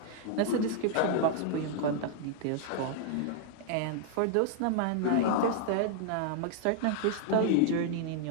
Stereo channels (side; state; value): both; different; correlation -0.01